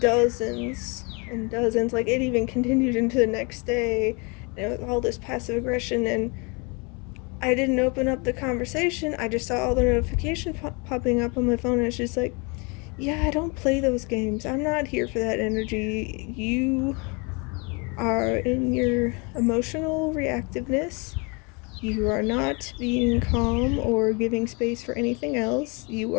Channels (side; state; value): right; quieter; 30.9 dB